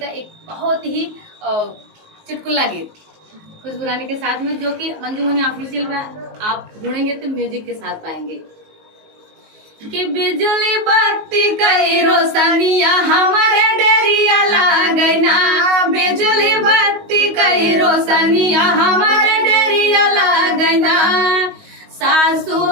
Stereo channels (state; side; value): late; left; 19 ms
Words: एक बहुत ही चुटकुला गीत खुशबू रानी के साथ में, जो कि मंजू मनी ऑफिशियल में आप ढूंढेंगे तो म्यूजिक के साथ पाएंगे। कि बिजली बत्ती कई रोशनिया हमारे डेरिया लागना, बिजली बत्ती कई रोशनिया हमारे डेरिया लागना। सासु